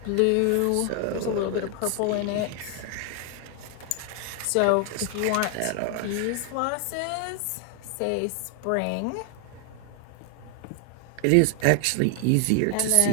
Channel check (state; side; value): different; both; correlation 0.00